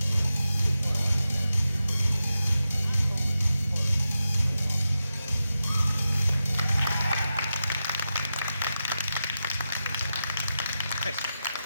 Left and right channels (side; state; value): both; inverted; correlation -0.90